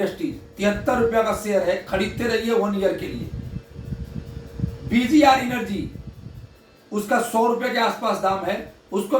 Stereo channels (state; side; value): identical; both; correlation 1.00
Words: 73 रुपया का शेयर है, खरीदते रहिए 1 ईयर के लिए। BGR एनर्जी, उसका 100 रुपए के आसपास दाम है, उसको